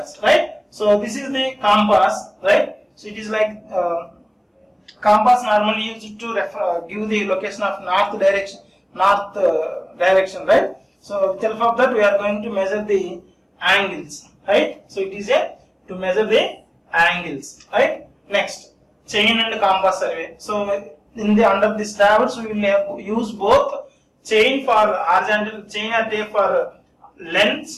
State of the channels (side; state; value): both; identical; correlation 1.00